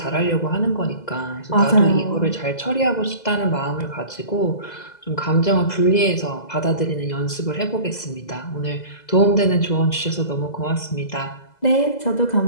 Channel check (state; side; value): late; right; 2.0 ms